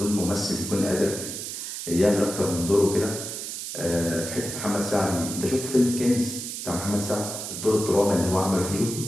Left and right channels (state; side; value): noise; right; hiss, 6 dB below the sound